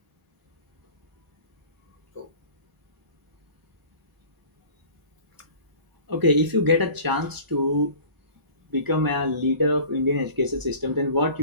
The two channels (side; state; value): left; late; 1.0 ms